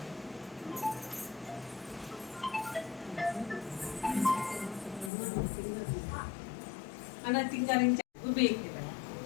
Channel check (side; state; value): right; drops out; at 5.1 s